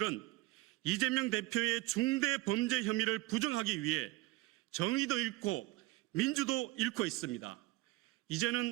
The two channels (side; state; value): left; quieter; 19.9 dB